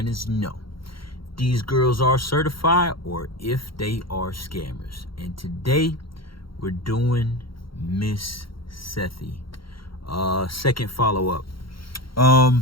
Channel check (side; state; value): right; late; 0.74 ms